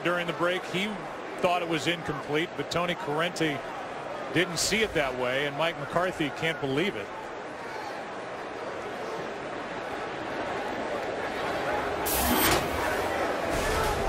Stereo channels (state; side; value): identical; both; correlation 1.00